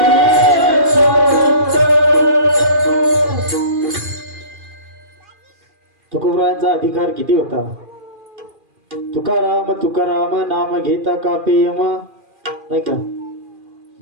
तुकोबरायांचा अधिकार किती होता. तुकाराम तुकाराम नाम घेता कापे यम नाही का.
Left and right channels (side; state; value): left; late; 2.4 ms